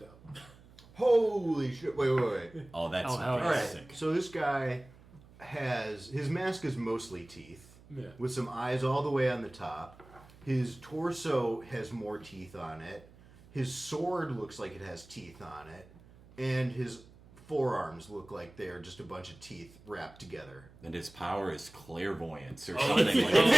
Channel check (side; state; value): right; noise; hum, 23 dB below the sound